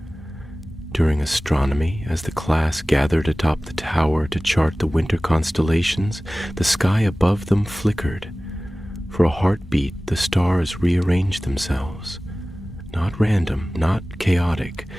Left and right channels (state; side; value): normal; both; correlation 0.98